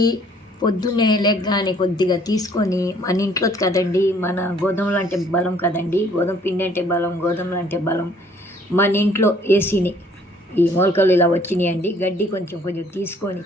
పొద్దున్నే లెగ్గానే కొద్దిగా తీసుకొని మన ఇంట్లో కదండి, మన గోధుమలు అంటే బలం కదండి, గోధుమ పిండి అంటే బలం, గోధుమలు అంటే బలం. మన ఇంట్లో వేసిని ఈ మొలకలు ఇలా వచ్చినాయండి. గడ్డి కొంచెం కొంచెం తీసుకొని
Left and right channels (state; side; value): normal; both; correlation 0.60